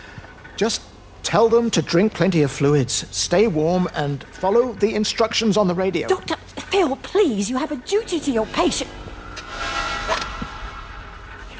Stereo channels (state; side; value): identical; both; correlation 1.00